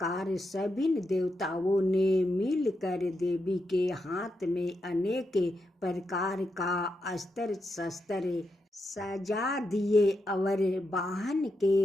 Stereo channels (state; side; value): normal; both; correlation 0.84